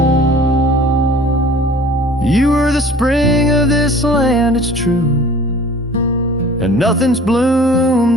You were the spring of this land, it's true, and nothing's bloomed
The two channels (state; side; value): normal; both; correlation 0.47